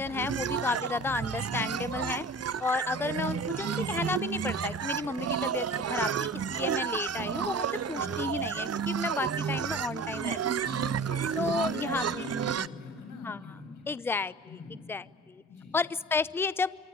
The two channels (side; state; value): both; normal; correlation 0.40